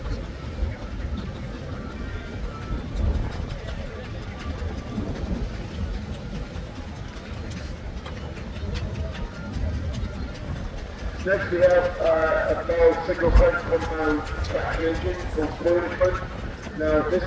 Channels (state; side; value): identical; both; correlation 1.00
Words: Next we have a Bell single front compound traction engine called Plowing. Now this